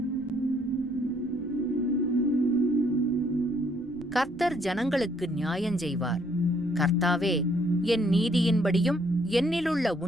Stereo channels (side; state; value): left; noise; rumble, 22 dB below the sound